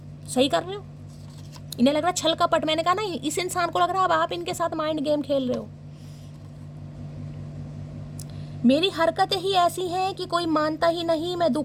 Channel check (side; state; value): both; identical; correlation 1.00